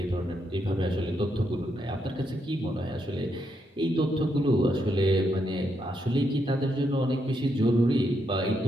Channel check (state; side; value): normal; both; correlation 0.79